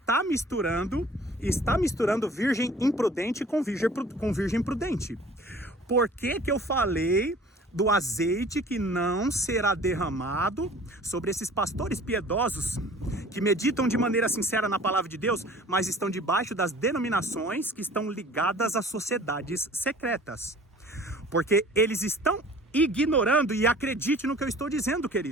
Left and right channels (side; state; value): both; normal; correlation 0.48